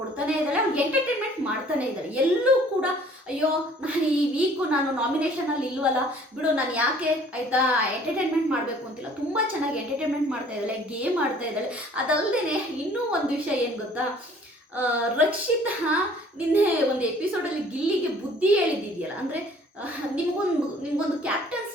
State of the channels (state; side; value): normal; both; correlation 0.54